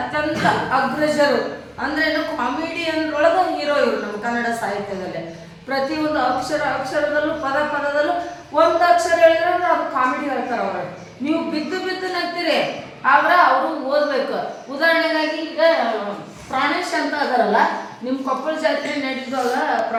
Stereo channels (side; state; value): both; identical; correlation 1.00